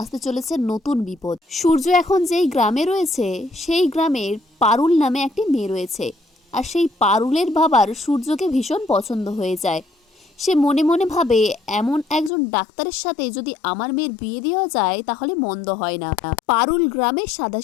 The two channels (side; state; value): right; drops out; at 12.3 s